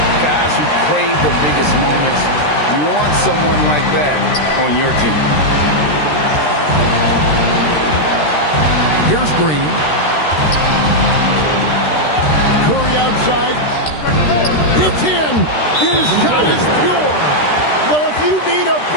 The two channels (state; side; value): late; right; 13 ms